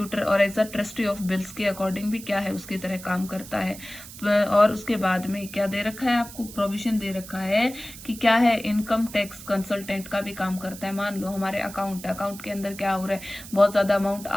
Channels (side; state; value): right; noise; hiss, 15 dB below the sound